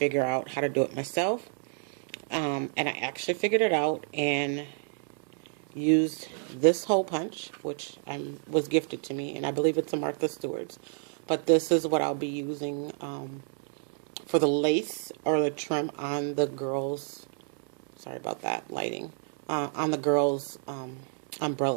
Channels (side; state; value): left; silent; 58 dB below the other